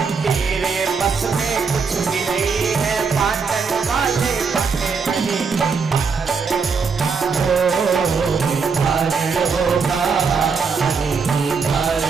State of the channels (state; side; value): quieter; left; 5.3 dB